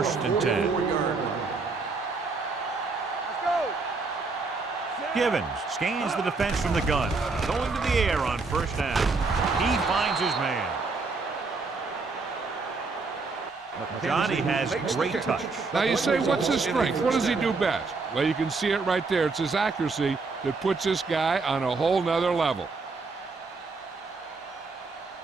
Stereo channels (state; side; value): quieter; left; 4.1 dB